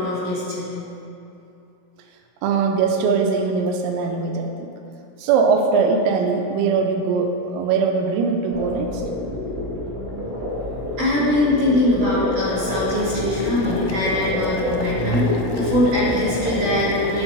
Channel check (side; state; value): left; late; 16 ms